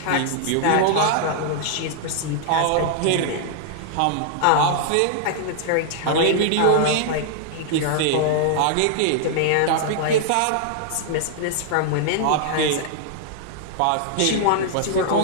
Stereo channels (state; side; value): different; both; correlation -0.01